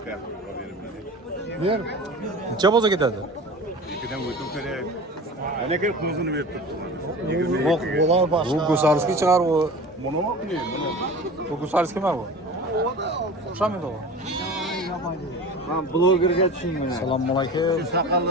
Ber. Necha bo'lsa ketadi? İkiden uyutum kerak. Ana kelib ko'zini berib turibdi. Yo'q, bo'lar Bu boshqa. Gusarskiy chiqar bu. Buni mi qilayım bunu? Bu Gusarskiymi bu? O'xshamaydi u. Men blogerga tushunmayman. Assalomu alaykum.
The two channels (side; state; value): both; normal; correlation 0.36